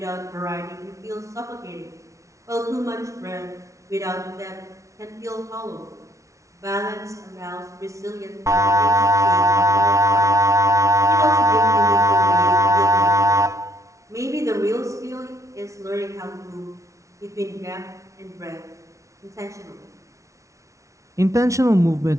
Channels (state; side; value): late; left; 0.15 ms